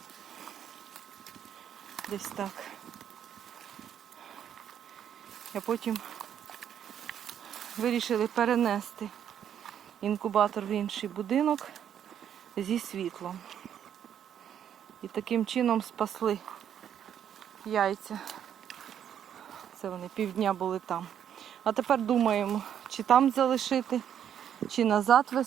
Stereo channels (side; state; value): left; quieter; 9.3 dB